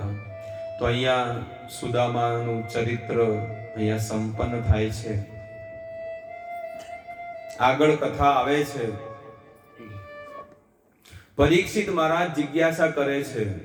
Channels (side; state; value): both; identical; correlation 1.00